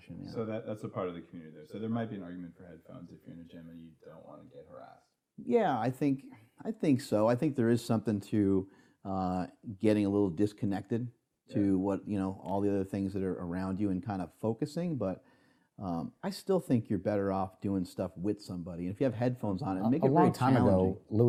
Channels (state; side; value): identical; both; correlation 1.00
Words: Yeah. So that's a part of the community there. So there might be an argument for headphones if you're in a gym and you don't want to get harassed. Yeah, I think so. I think there is something to getting a little disconnected to what, you know, all the other things that are around you and kind of focusing, but I still think you're better off doing stuff with somebody. And if you have headphones on, it make it very challenging. A long time ago,